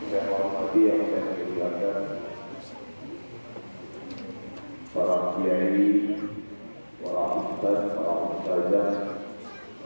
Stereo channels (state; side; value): inverted; both; correlation -1.00